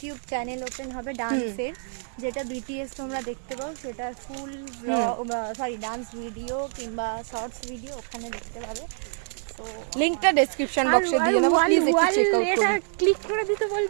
চ্যানেল ওপেন হবে ডান্সের, যেটা বিটিএস তোমরা দেখতে পাও, সেটা ফুল ডান্স ভিডিও কিংবা শর্টস ভিডিও ওখানে দেখতে পাবে। তো লিংকটা ডেসক্রিপশন বক্সে দিয়ে দেবো, প্লিজ একটু চেক আউট করুন। ক্লিক করে দিতে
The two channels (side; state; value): left; silent; 61 dB below the other